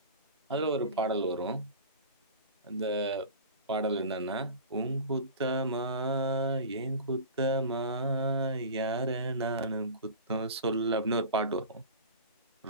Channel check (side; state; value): both; inverted; correlation -0.35